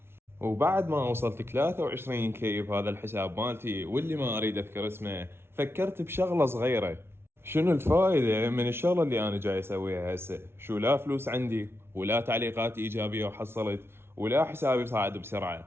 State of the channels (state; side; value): late; left; 0.12 ms